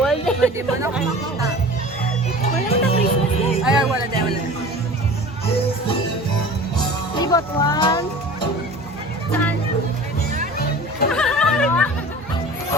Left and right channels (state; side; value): normal; both; correlation 0.40